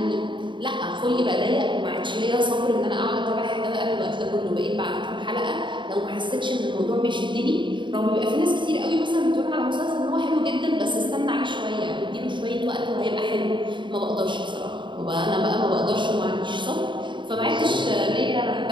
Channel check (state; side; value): late; left; 0.23 ms